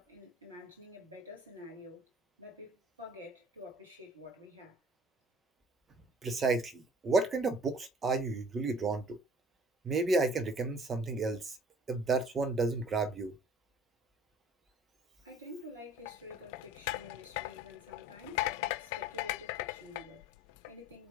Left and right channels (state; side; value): normal; both; correlation 0.51